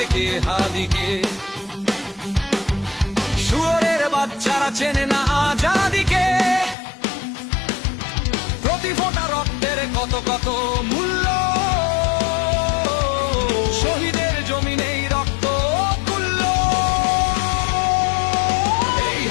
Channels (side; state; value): right; drops out; at 6.8 s